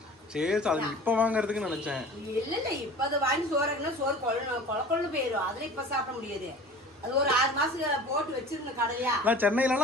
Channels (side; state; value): both; normal; correlation 0.41